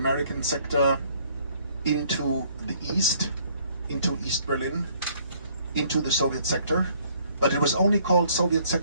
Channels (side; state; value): both; inverted; correlation -0.63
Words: sector into the east, into East Berlin, into the Soviet sector. But it was only called Soviet